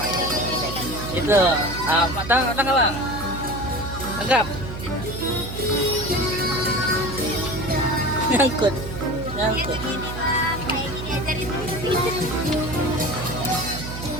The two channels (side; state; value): right; noise; hum, 8 dB below the sound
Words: Itu, matang Abang. Tangkap. Nyangkut. Nyangkut. Kayak gini ajarin